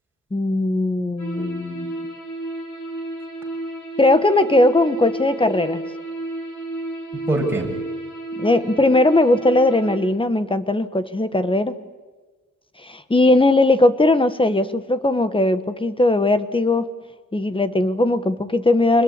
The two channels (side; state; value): both; normal; correlation 0.67